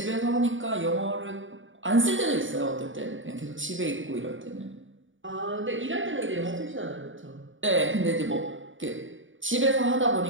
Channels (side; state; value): left; late; 0.56 ms